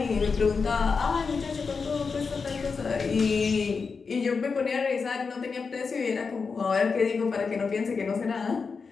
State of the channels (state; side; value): quieter; right; 5.0 dB